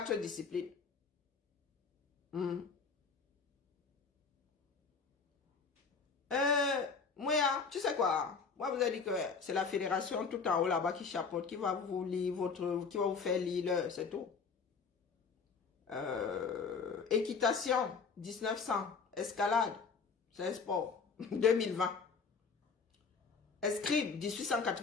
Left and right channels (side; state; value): right; quieter; 5.2 dB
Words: disciplines. Moi, tu sais quoi? Moi, vous avez dit que c'est la fédération tout en haut là-bas qui chapeaute, qui va vous lire qui va vous faire lire, c'est tout. Équitation, 1900. Escalade, c'est un sport, 2020. Escrime,